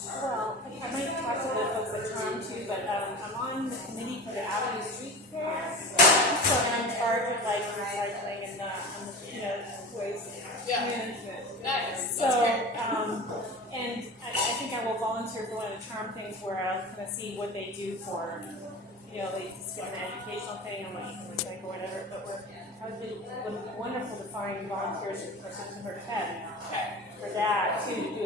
Well, I might talk to the folks at Charm too, but I'm on the committee for the Avenue Street Fair, so I'm in charge of recycling and waste management. Nice. So, That's great. and I think I will volunteer for one of the Charm things where I'll kind of see what they do for, they just get an educational thing on what you can recycle or whatever. But it would be wonderful to find volunteers for September 10th for that too, to do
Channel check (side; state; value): both; normal; correlation 0.33